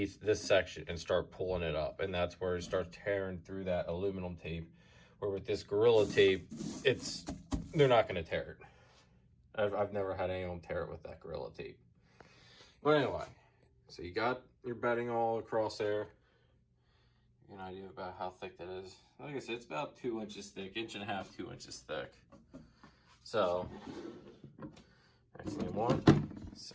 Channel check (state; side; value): identical; both; correlation 1.00